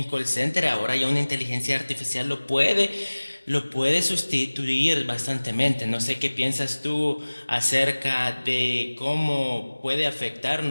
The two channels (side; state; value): both; inverted; correlation -1.00